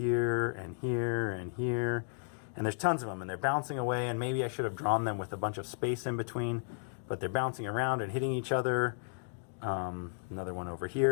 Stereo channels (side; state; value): right; silent; digital silence